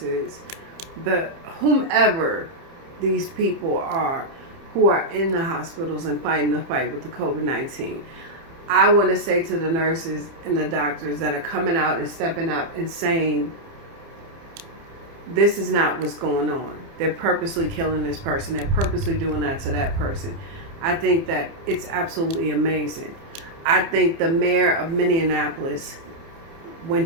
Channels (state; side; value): late; left; 30 ms